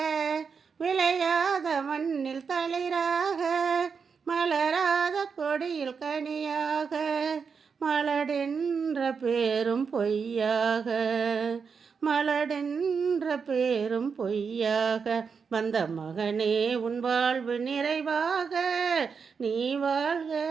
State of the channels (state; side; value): quieter; left; 5.8 dB